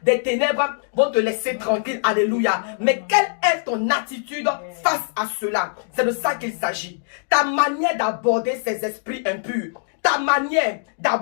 des ténèbres vont te laisser tranquille. Alléluia. Mais quelle est ton attitude face à cela? C'est de ça qu'il s'agit. Ta manière d'aborder ces esprits impurs, ta manière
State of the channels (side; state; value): right; silent; digital silence